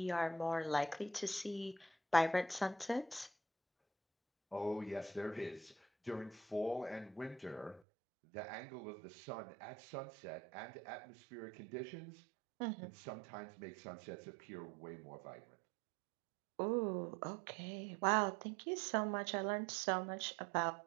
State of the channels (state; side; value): drops out; left; at 7.8 s